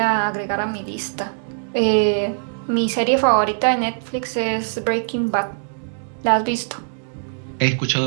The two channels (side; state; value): left; silent; digital silence